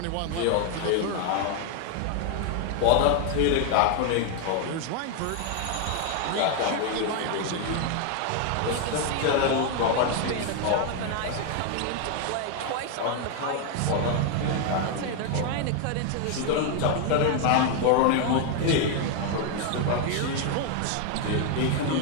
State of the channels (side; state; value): both; different; correlation 0.01